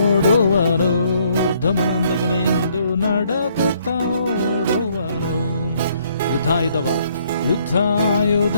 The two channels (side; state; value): both; inverted; correlation -0.67